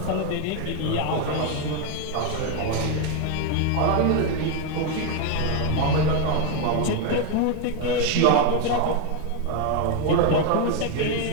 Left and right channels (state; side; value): different; both; correlation 0.01